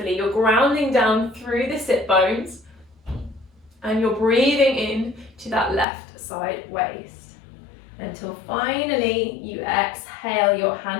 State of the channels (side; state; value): right; drops out; at 5.9 s